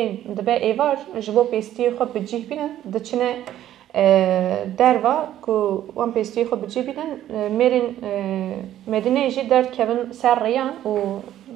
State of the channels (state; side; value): quieter; left; 12.2 dB